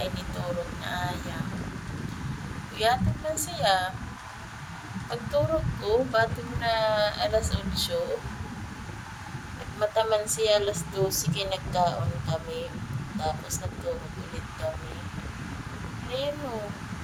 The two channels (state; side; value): identical; both; correlation 1.00